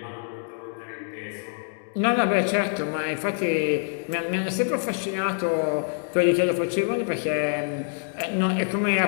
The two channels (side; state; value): right; silent; digital silence